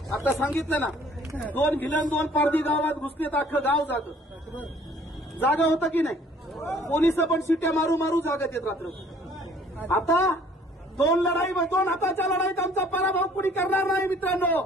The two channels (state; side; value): normal; both; correlation 0.56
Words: आता सांगितलं ना, 2 भिलन 2 पारधी गावात घुसले तर अख्खं गाव जागा होतं की नाही? पोलिस पण शिट्या मारू मारू जागत येत रात्र। आता 2 हाताच्या लढाईत आमचा पराभव कुणी करणार नाही मित्रांनो।